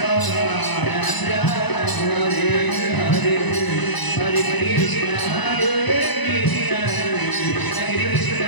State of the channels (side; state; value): right; late; 1.0 ms